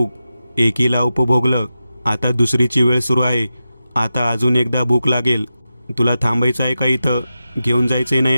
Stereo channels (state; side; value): inverted; both; correlation -0.91